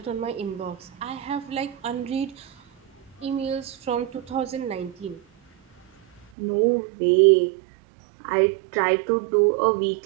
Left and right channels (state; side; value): drops out; left; at 6.2 s